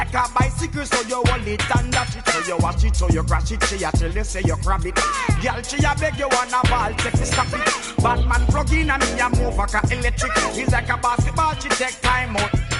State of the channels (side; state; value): both; identical; correlation 1.00